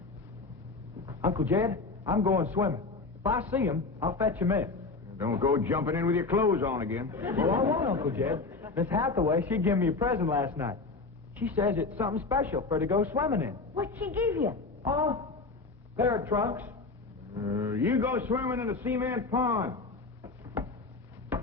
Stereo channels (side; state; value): right; quieter; 3.8 dB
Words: Uncle Jed, I'm going swimming. If I see him, I'll fetch him in. Don't go jumping in with your clothes on again. Well, I won't, Uncle Jed. Miss Hathaway, she gave me a present last night. She says it's something special for her to go swimming in. What'd she give you? Oh, pair of trunks. You go swimming in a cement pond.